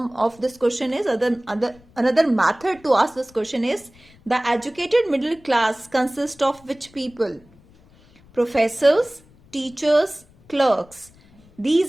of this question is, another method to ask this question is, the educated middle class consists of which people? Professors, teachers, clerks.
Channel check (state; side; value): noise; left; rumble, 28 dB below the sound